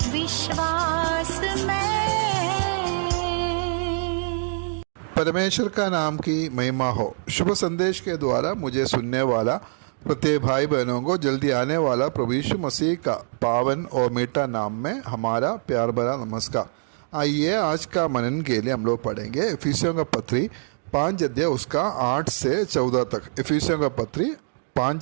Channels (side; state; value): left; silent; digital silence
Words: विश्वास मैं। परमेश्वर का नाम की महिमा हो। शुभ संदेश के द्वारा मुझे सुनने वाला प्रत्येक भाई बहनों को जल्दी आने वाला प्रभु यीशु मसीह का पावन और मीठा नाम में हमारा प्यार भरा नमस्कार। आइए आज का मनन के लिए हम लोग पढ़ेंगे इफिसियों का पत्री 5 अध्याय उसका 8 से 14 तक। इफिसियों का पत्री